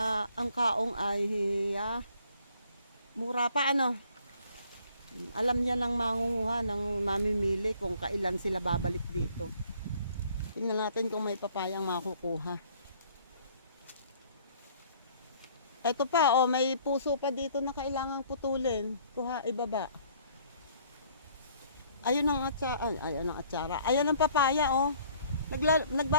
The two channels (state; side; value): inverted; both; correlation -0.59